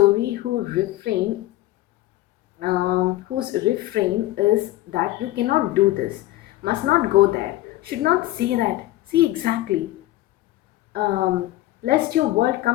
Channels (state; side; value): quieter; right; 16.6 dB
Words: whose refrain is that you cannot do this, must not go there, should not say that, see exactly, lest your world